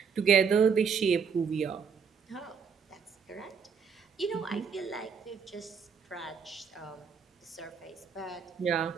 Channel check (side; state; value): left; quieter; 6.2 dB